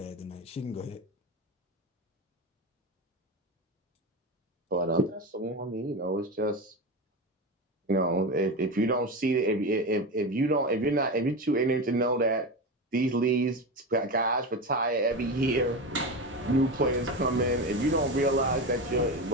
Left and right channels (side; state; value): both; normal; correlation 0.21